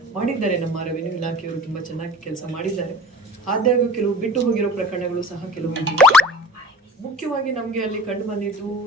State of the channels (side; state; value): both; normal; correlation 0.42